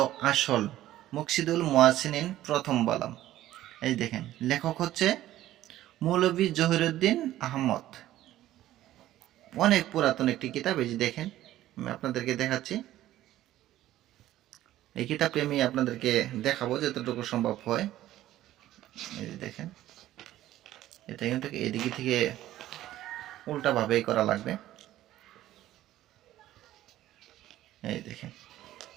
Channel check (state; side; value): quieter; left; 14.0 dB